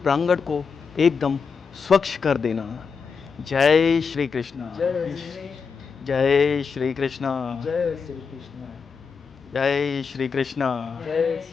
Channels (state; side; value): quieter; right; 5.6 dB